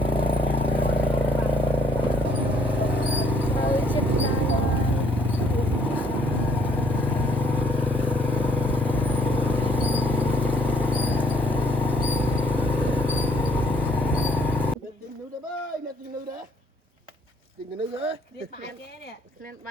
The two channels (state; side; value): normal; both; correlation 0.65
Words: Việc bài kia nè, lên